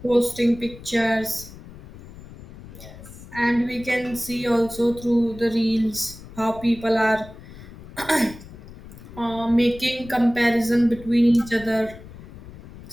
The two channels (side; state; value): left; noise; rumble, 17 dB below the sound